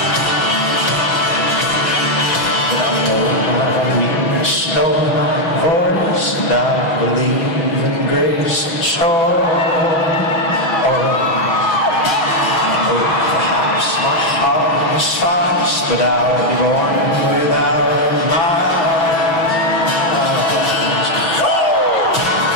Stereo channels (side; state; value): right; late; 6.1 ms